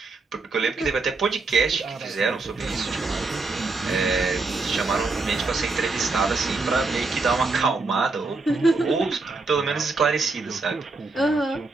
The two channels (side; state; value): left; quieter; 3.7 dB